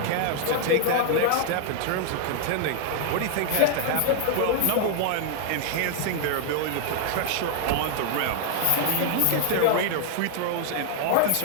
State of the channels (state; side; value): different; both; correlation 0.00